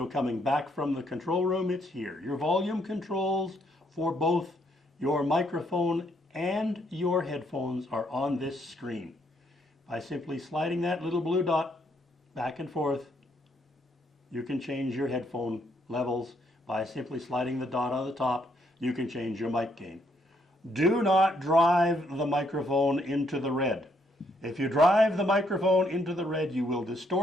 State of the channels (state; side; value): normal; both; correlation 0.72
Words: coming back from the control room, it's here. Your volume controls for both your microphone and your headphones are on this screen. By simply sliding that little blue dot back and forth, you can change your headphone levels. By simply sliding the dot on the top, you can change your mic gain. Do not drive the microphone into the red. If you drive the microphone into the red, you will